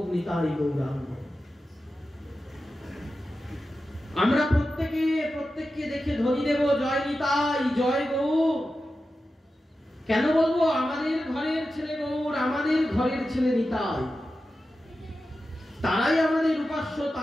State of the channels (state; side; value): normal; both; correlation 0.92